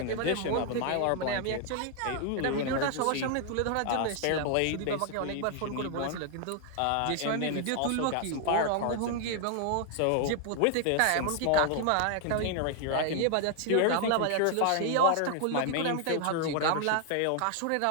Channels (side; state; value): both; different; correlation 0.00